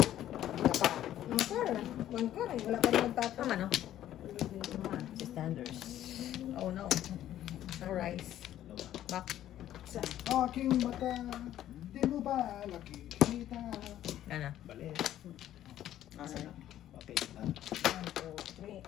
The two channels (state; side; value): quieter; right; 12.3 dB